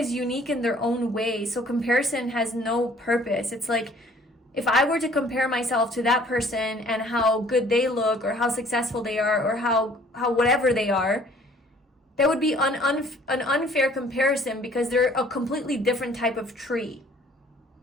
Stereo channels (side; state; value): both; normal; correlation 0.56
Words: unique in their own way. So comparison has no purpose. It's like, if I were to compare myself to that person and how good they look or how successful they are or how whatever they are, that would be an unfair comparison because they're a completely different type of tree.